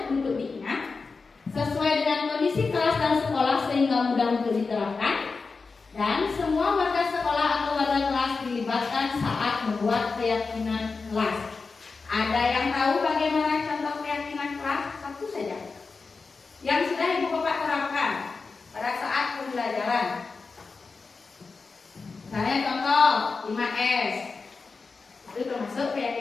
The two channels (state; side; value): quieter; right; 4.4 dB